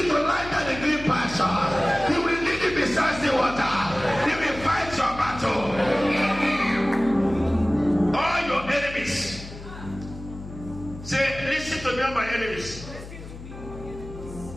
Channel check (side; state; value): left; noise; hum, 13 dB below the sound